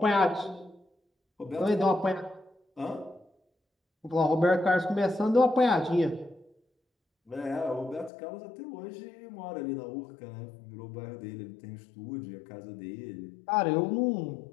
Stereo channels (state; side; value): drops out; right; at 8.1 s